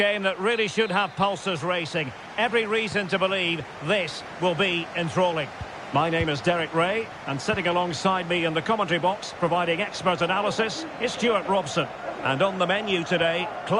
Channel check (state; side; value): identical; both; correlation 1.00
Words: that really should have pulses racing. Every reason to believe this will be enthralling. My name is Derek Ray, and sitting alongside me in the commentary box, providing expert analysis, is Stuart Robson. And on the menu today,